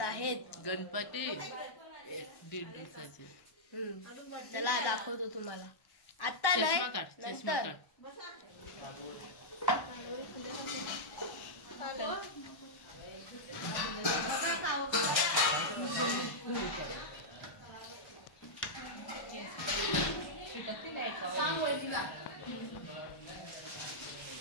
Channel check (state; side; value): late; right; 1.1 ms